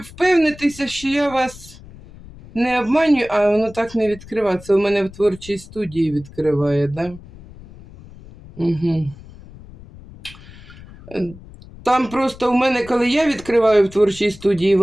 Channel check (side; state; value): left; noise; rumble, 19 dB below the sound